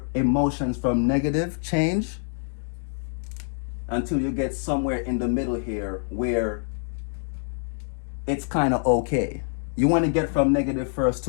emotions from negative change, until you get somewhere in the middle here where it's kind of okay. You want to get from negative first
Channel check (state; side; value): silent; right; 61 dB below the other